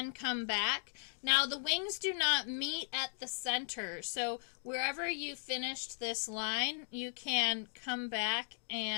come back. Now the wings do not meet at the center, so wherever you finished this line, you can come back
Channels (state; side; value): silent; right; 53 dB below the other